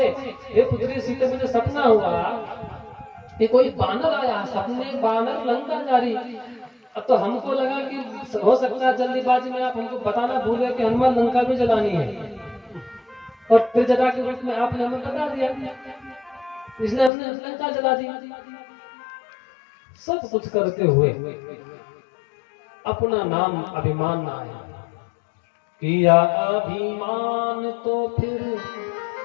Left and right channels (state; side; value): drops out; right; at 17.1 s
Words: हे पुत्री सीते, मुझे सपना हुआ कि कोई बानर आया, सपने बानर लंका जा रही। अब तो हमको लगा कि हो सकता है जल्दीबाजी में आप हमको बताना भूल गए कि हनुमान लंका भी जलानी है, और त्रिजटा के रूप में आपने हमें बता दिया, इसलिए हमने लंका जला दी। सब कुछ करते हुए अपना नाम अभिमान ना आए। किया अभिमान तो फिर